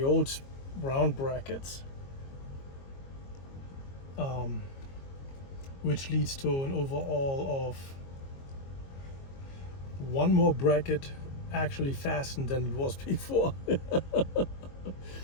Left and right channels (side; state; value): right; late; 22 ms